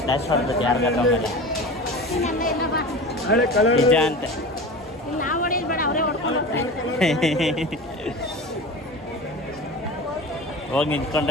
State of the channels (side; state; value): both; normal; correlation 0.32